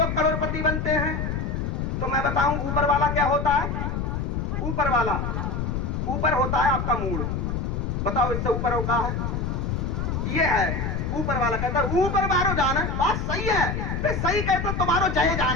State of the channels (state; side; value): noise; left; rumble, 1 dB below the sound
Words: करोड़पति बनते हैं। तो मैं बताऊं ऊपर वाला क्या होता है? ऊपर होता है आपका मूड। बताओ इससे ऊपर होता है ये है ऊपर वाला। कहता है ऊपर बारो जाना, बात सही है, फिर सही कहते तो बारो जय